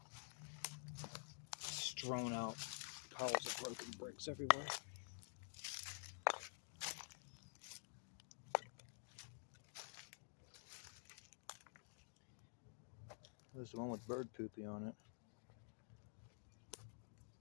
Strewn out piles of broken bricks everywhere. There's the one with bird poopy on it.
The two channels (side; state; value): right; silent; digital silence